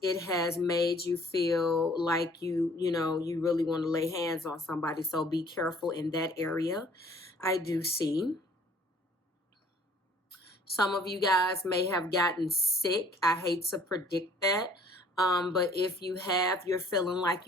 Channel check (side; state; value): both; normal; correlation 0.56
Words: it has made you feel like you really want to lay hands on somebody. So be careful in that area. I do see. Some of you guys may have gotten sick. I hate to predict that. But if you have, you're feeling like